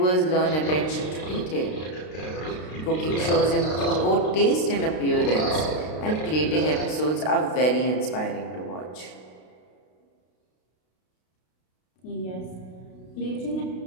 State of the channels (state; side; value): late; right; 32 ms